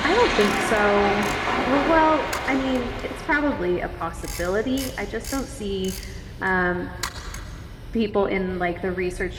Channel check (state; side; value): identical; both; correlation 1.00